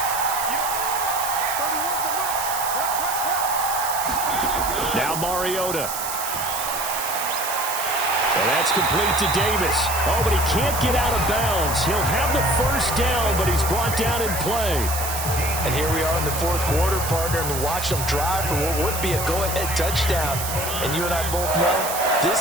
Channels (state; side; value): noise; right; hiss, 5 dB below the sound